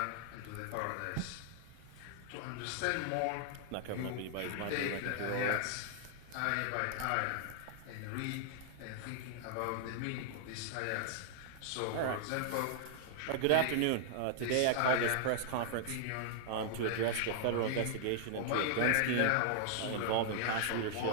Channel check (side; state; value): both; different; correlation -0.01